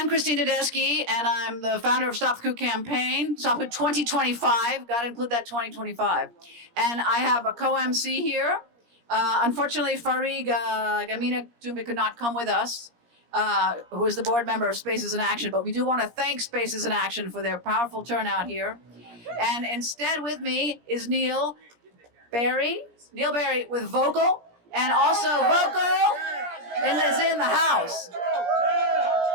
Tedeschi, and I'm the founder of Stop The Coup campaign, Stop The Coup 2025, got to include that 2025. And I have a co-MC here. Unfortunately, Farid Gamina Toumbe could not come with us, who is the board member of Spaces in Action, but we do want to thank Spaces in Action for their powerful turnout here. And instead with me is Neil Barry with vocal, and also vocal is in the house.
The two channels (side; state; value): left; late; 17 ms